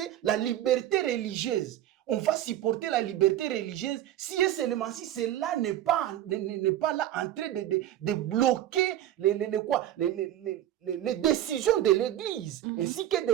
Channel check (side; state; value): left; quieter; 12.5 dB